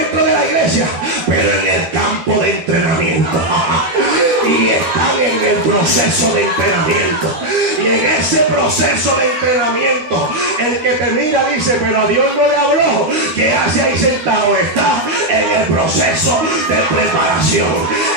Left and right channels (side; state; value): left; late; 13 ms